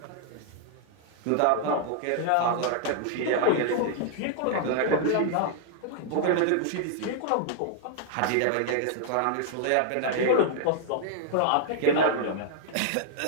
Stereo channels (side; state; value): both; different; correlation 0.00